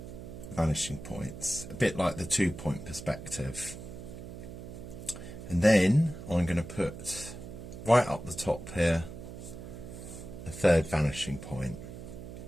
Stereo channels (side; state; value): right; noise; hum, 11 dB below the sound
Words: vanishing points, a bit like the 2-point perspective. And then I'm going to put right up the top here a third vanishing point.